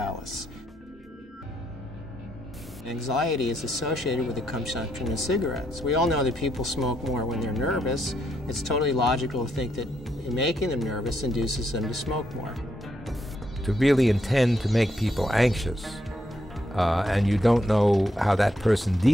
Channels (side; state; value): both; normal; correlation 0.77